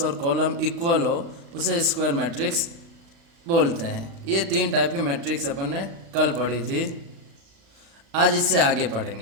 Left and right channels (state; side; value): late; left; 36 ms